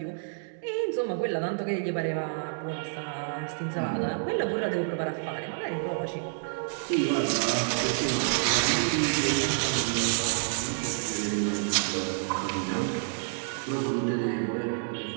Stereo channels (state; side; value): silent; left; digital silence